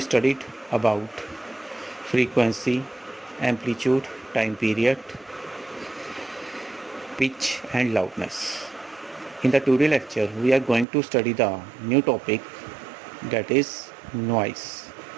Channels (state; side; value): drops out; left; at 10.9 s